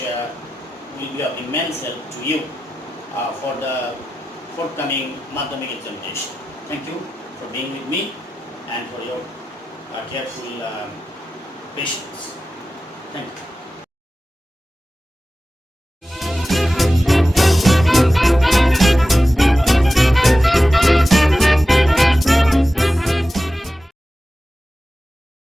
will be of immense help to you for the forthcoming Madhyamik examination. Thank you for being with me and for your careful patience. Thank you.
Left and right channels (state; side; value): normal; both; correlation 0.93